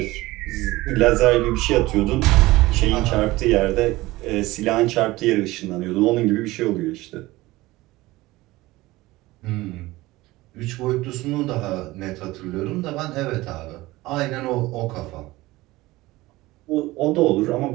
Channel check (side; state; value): left; quieter; 19.2 dB